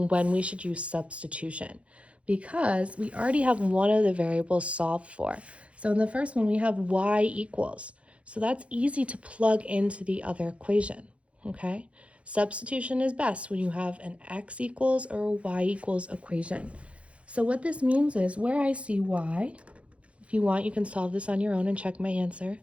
when we should use substitution because we already have one of the variables solved for. So in the first one, we have y equals. So that's easy to plug into the other equation, okay? Substitution is best when you have an x equals or a y equals equation. So what this means is where I see y, if you want, you can solve this on your own and check my answer.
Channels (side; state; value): left; late; 0.062 ms